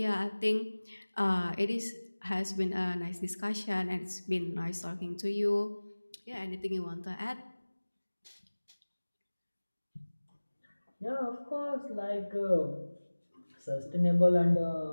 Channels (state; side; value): inverted; both; correlation -1.00